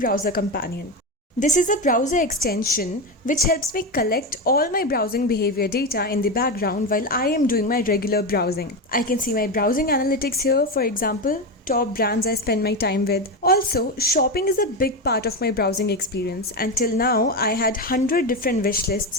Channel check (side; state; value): both; normal; correlation 0.15